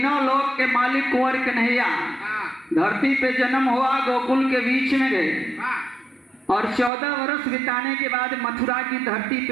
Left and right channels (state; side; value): drops out; left; at 6.9 s